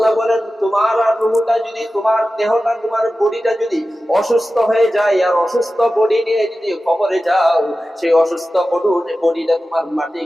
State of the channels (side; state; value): both; normal; correlation 0.94